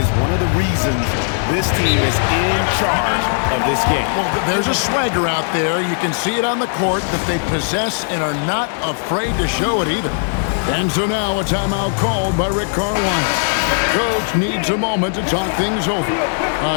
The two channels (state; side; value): silent; right; digital silence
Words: one of the reasons this team is in charge of this game. Well, there's a swagger out there. You can see it on the court that they possess and are not afraid to show it either. And so now a timeout called by Rick Carlisle. Coach needs a moment to talk things over.